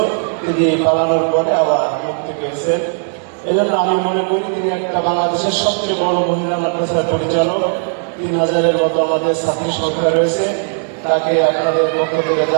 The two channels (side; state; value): left; silent; 61 dB below the other